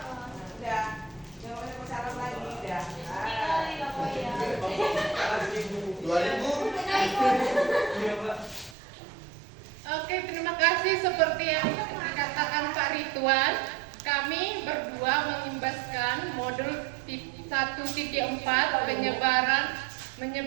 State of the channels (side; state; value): left; drops out; at 8.8 s